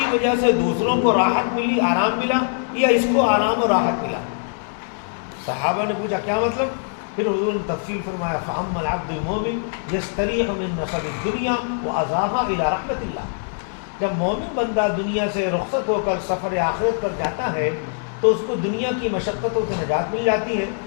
وجہ سے دوسروں کو راحت ملی، آرام ملا، یا اس کو آرام و راحت ملا۔ صحابہ نے پوچھا کیا مطلب؟ پھر حضور نے تفصیل فرمایا فَأَمَّا الْعَبْدُ الْمُؤْمِنُ يَسْتَرِيحُ مِن نَصَبِ الدُّنْيَا وَأَذَاهَا إِلَى رَحْمَةِ اللَّهِ۔ جب مومن بندہ دنیا سے رخصت ہو کر سفر آخرت پر جاتا ہے تو اس کو دنیا کی مشقتوں سے نجات مل جاتی ہے،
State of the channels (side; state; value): right; silent; 63 dB below the other